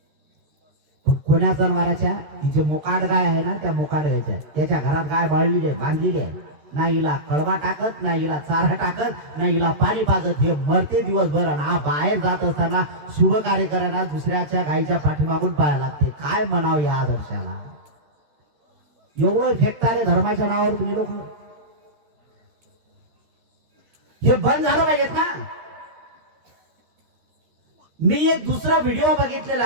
पण कोण्या जनावराच्या? ती जे मोकाट गाय आहे ना, त्या मोकाट गायच्या, त्याच्या घरात गाय बाळलेली आहे, बांधलेली आहे. ना हिला कळवा टाकत, ना हिला चारा टाकत, ना हिला पाणी पाजत. हे मरते दिवसभर. आणि हा बाहेर जात असताना शुभ कार्य करायला दुसऱ्याच्या गायीच्या पाठीमागून पाहायला लागते. काय म्हणावं या आदर्शाला? एवढं फेकतारे धर्माच्या नावावर तुम्ही लोक. हे बंद झालं पाहिजेत ना. मी एक दुसरा व्हिडिओ बघितलेला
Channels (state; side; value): late; left; 13 ms